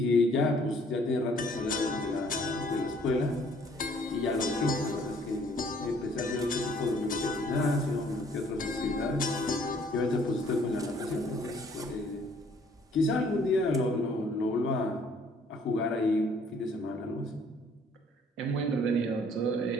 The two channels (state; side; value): normal; both; correlation 0.60